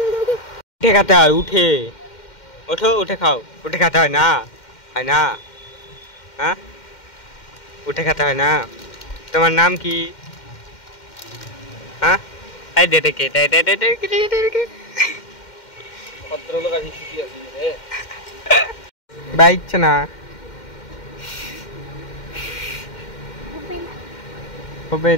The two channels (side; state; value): right; late; 2.1 ms